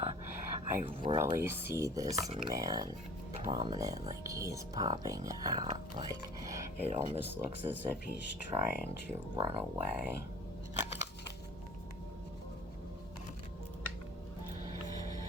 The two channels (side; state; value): both; normal; correlation 0.47